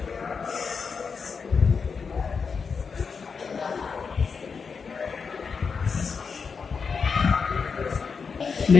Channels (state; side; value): quieter; right; 5.5 dB